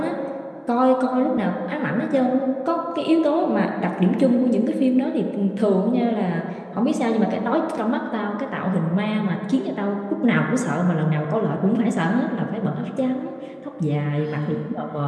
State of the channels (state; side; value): identical; both; correlation 1.00